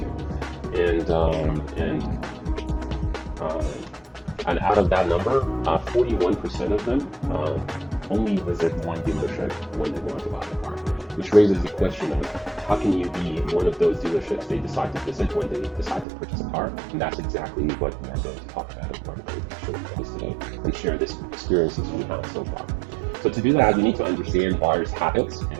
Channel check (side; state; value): left; drops out; at 16.1 s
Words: And out of that number, 41% of them only visit one dealership when they want to buy a car, which raises the question of how can you be one of those dealerships they decide to visit when they decide to purchase a car? And that's exactly what we are going to talk about as part of the show you guys today and share this experiences we have so far. So to do that, we need to understand buyers' habits